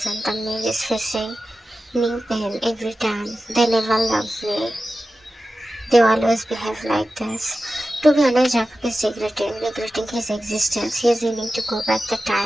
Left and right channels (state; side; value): normal; both; correlation 0.94